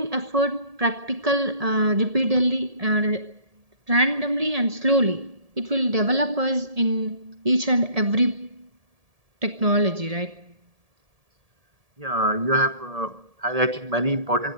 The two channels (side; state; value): left; late; 1.7 ms